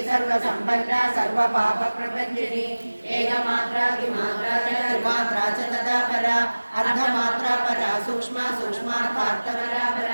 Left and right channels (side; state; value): both; inverted; correlation -1.00